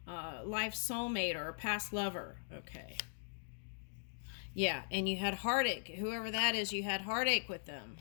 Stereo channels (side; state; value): right; silent; digital silence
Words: life soulmate or a past lover. Okay. Yeah, and you had heartache. Whoever that is, you had heartache with them.